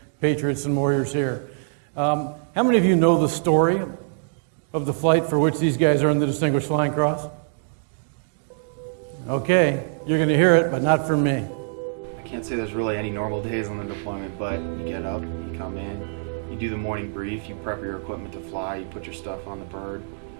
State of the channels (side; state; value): left; silent; digital silence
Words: patriots and warriors here. How many of you know the story of the flight for which these guys earned the Distinguished Flying Cross? Okay, you're going to hear it, but not from me. I can't say there's really any normal days on the deployment, but you get up, you come in, you do the morning brief, you prep your equipment to fly, you put your stuff on the bird,